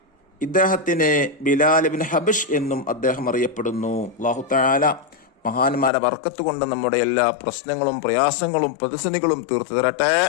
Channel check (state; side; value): drops out; right; at 5.9 s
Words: ഇദ്ദേഹത്തിന് ബിലാൽ ഇബ്നു ഹബഷ് എന്നും അദ്ദേഹം അറിയപ്പെടുന്നു. അല്ലാഹു തആല മഹാന്മാരെ ബർക്കത്ത് കൊണ്ട് നമ്മുടെ എല്ലാ പ്രശ്നങ്ങളും പ്രയാസങ്ങളും പ്രതിസന്ധികളും തീർത്തു തരട്ടെ.